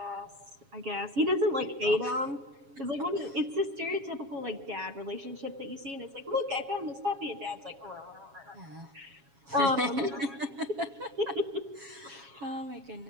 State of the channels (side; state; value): left; late; 7.3 ms